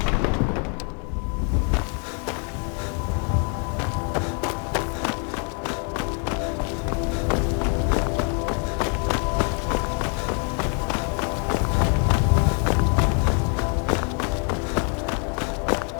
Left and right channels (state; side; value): quieter; right; 39.6 dB